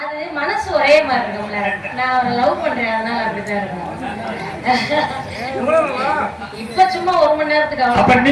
அது மனசு ஒரே மாதிரி இருக்கும்ல. நான் அவரை லவ் பண்றேன், அதனால அப்படிதான் இருக்கும். இப்ப சும்மா 1 மணி நேரத்துக்கு அப்ப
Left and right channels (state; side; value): identical; both; correlation 1.00